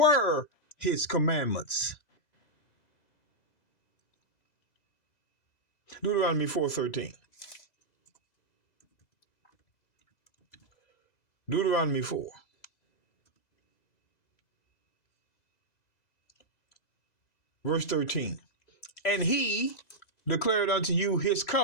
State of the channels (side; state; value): right; late; 2.0 ms